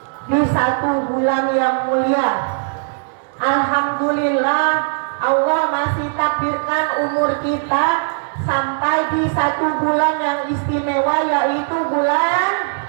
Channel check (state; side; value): silent; left; digital silence